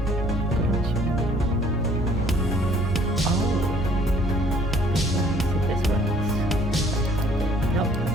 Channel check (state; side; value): normal; both; correlation 0.59